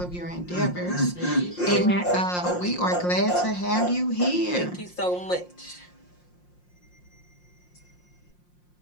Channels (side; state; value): right; late; 5.6 ms